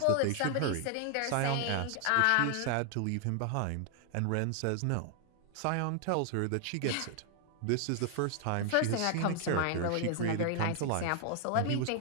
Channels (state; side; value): different; both; correlation 0.00